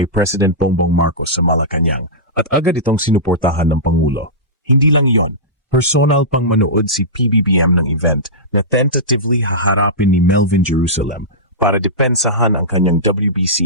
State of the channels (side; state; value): both; normal; correlation -0.16